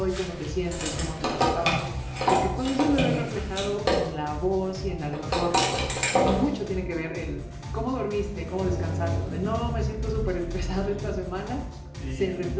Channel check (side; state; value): both; identical; correlation 1.00